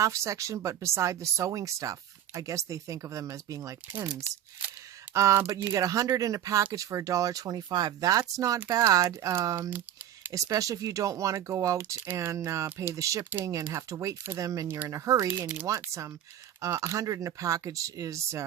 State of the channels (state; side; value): quieter; left; 11.1 dB